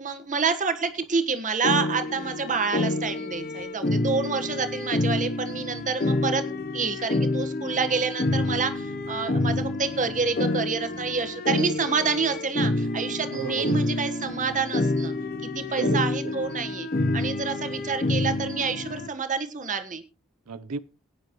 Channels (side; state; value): both; normal; correlation 0.39